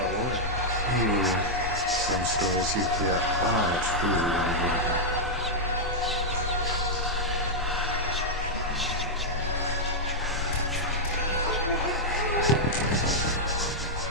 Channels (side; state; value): both; normal; correlation -0.05